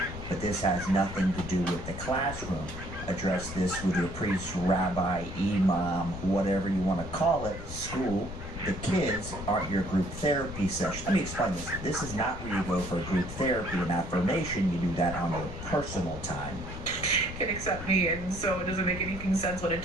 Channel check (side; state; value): left; noise; rumble, 9 dB below the sound